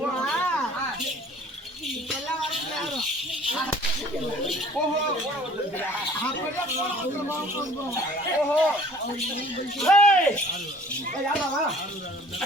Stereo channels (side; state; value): both; normal; correlation 0.51